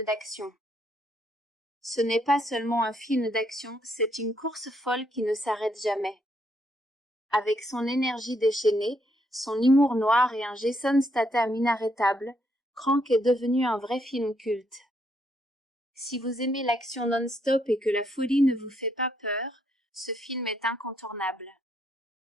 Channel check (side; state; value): both; normal; correlation 0.74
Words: d'action. Ce n'est pas seulement un film d'action, c'est une course folle qui ne s'arrête jamais. Avec son énergie déchaînée, son humour noir et un Jason Statham inarrêtable, Crank est devenu un vrai film culte. Si vous aimez l'action non-stop et que la folie ne vous fait pas peur, ce film est incontournable.